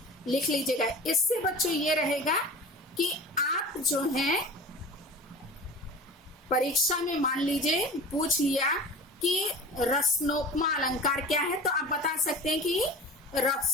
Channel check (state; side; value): normal; both; correlation 0.35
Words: लिख लीजिएगा। इससे बच्चों ये रहेगा कि आप जो हैं परीक्षा में मान लीजिए पूछ लिया कि रसनोपमा अलंकार क्या है, तो आप बता सकते हैं कि